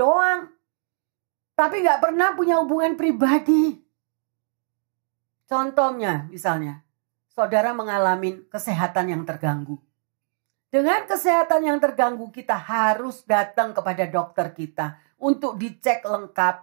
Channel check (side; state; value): left; silent; digital silence